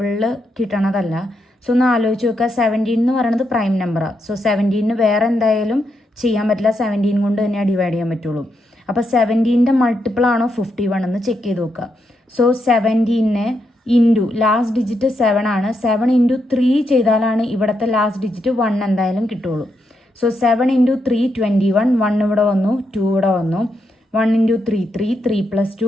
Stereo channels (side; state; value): both; normal; correlation 0.81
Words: കിട്ടണതല്ല. സോ ഒന്ന് ആലോചിച്ച് നോക്കുക. 17 എന്ന് പറയുന്നത് പ്രൈം നമ്പറാണ്. സോ 17ന് വേറെ എന്തായാലും ചെയ്യാൻ പറ്റില്ല, 17 കൊണ്ട് തന്നെയാണ് ഡിവൈഡ് ചെയ്യാൻ പറ്റുള്ളൂ. അപ്പോൾ 17ൻ്റെ മൾട്ടിപ്പിൾ ആണോ 51 എന്ന് ചെക്ക് ചെയ്ത് നോക്കുക. സോ 17നെ ഇൻറ്റു ലാസ്റ്റ് ഡിജിറ്റ് 7 ആണ്. 7 ഇൻറ്റു 3 ചെയ്താലാണ് ഇവിടുത്തെ ലാസ്റ്റ് ഡിജിറ്റ് 1 എന്തായാലും കിട്ടുള്ളൂ. സോ 7 ഇൻറ്റു 3 21, 1 ഇവിടെ വന്നു, 2 ഇവിടെ വന്നു. 1 ഇൻറ്റു 3 3, 3 +